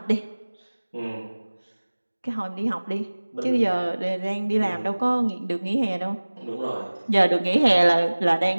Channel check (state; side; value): inverted; both; correlation -1.00